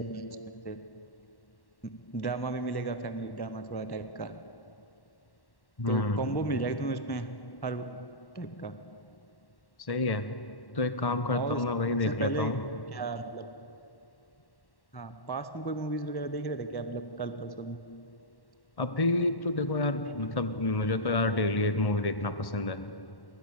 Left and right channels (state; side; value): late; right; 1.1 ms